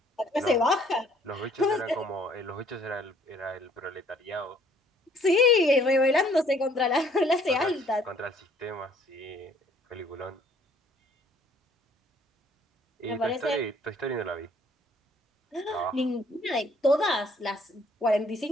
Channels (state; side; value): normal; both; correlation 0.60